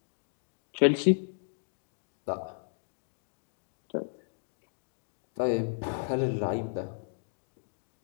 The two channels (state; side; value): silent; right; digital silence